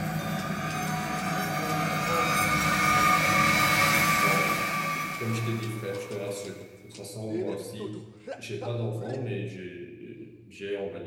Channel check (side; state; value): both; identical; correlation 1.00